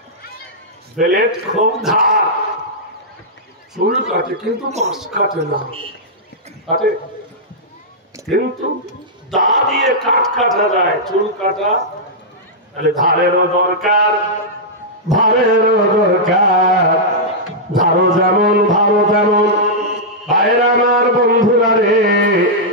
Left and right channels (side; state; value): both; normal; correlation -0.10